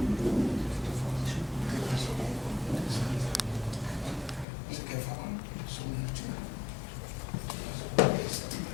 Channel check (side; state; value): right; drops out; at 4.5 s